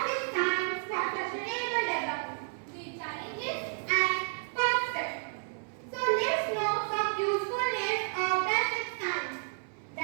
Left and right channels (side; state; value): left; silent; 57 dB below the other